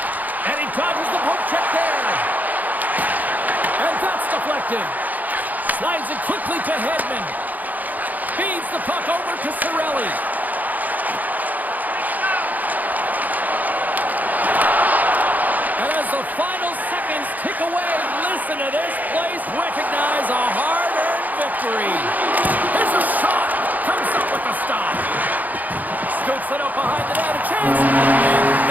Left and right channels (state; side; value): late; left; 0.081 ms